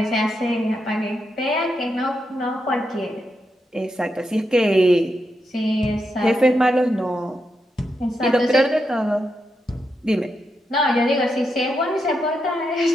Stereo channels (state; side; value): normal; both; correlation 0.84